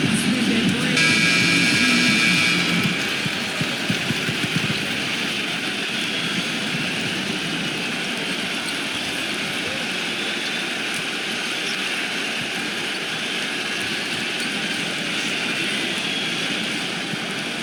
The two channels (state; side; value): identical; both; correlation 1.00